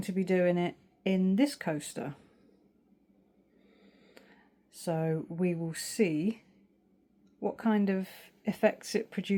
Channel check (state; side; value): identical; both; correlation 1.00